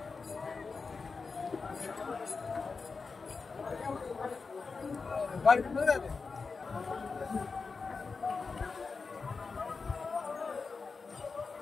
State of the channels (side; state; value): right; quieter; 4.6 dB